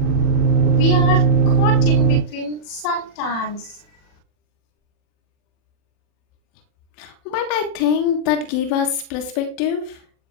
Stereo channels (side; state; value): right; late; 40 ms